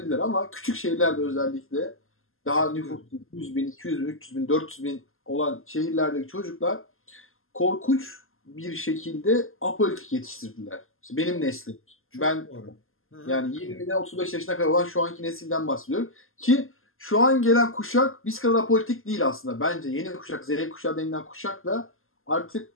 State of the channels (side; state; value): right; late; 0.61 ms